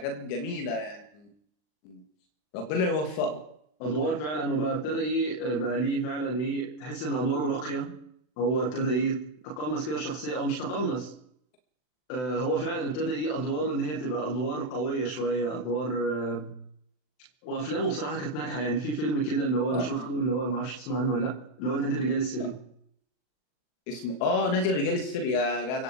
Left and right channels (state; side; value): late; right; 39 ms